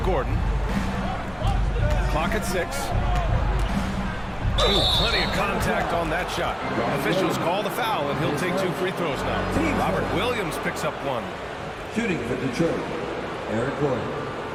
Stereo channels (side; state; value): both; identical; correlation 1.00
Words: Clock at 6. Ooh, plenty of contact on that shot. Officials call the foul, and he'll take 2 free throws now. Robert Williams picks up 1. Shooting for Detroit, Eric Gordon.